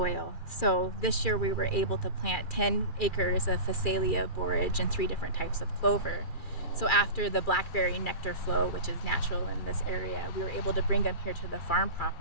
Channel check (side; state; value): right; late; 2.4 ms